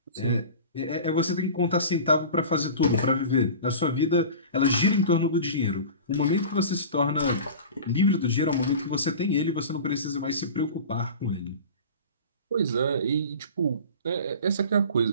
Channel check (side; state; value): both; inverted; correlation -0.36